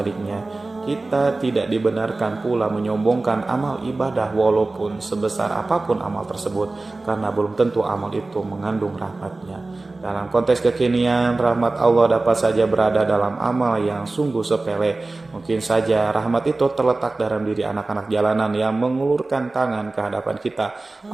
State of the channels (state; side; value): quieter; left; 3.2 dB